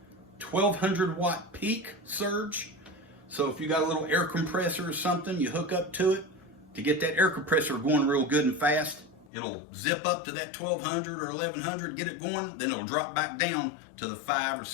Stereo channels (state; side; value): drops out; right; at 9.2 s